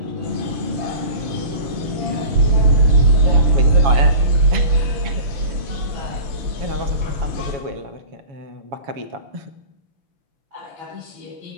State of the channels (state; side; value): late; left; 7.2 ms